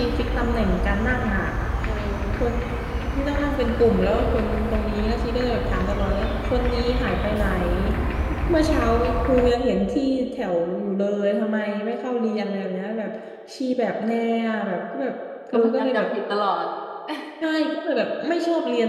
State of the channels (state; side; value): identical; both; correlation 1.00